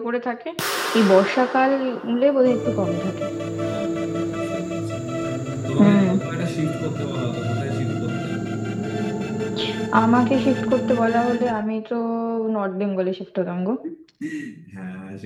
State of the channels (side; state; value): both; identical; correlation 1.00